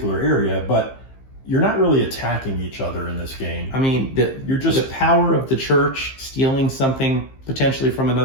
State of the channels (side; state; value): right; late; 15 ms